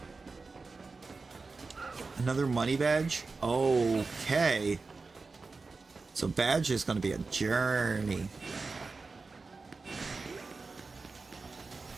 another money badge. Okay, so badge is going to be a journey.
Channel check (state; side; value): quieter; left; 4.1 dB